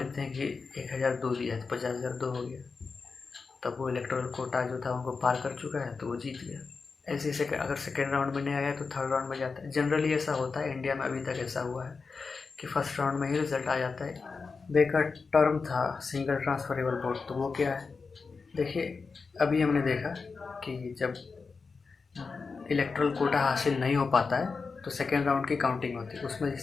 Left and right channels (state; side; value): quieter; right; 4.7 dB